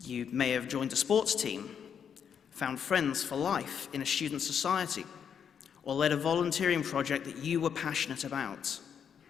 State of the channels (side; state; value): right; quieter; 7.7 dB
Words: You may have joined a sports team, found friends for life in a student society, or led a volunteering project that you were passionate about.